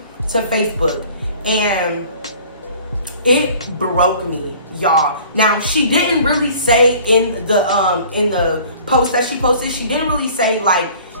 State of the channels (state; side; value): inverted; both; correlation -0.49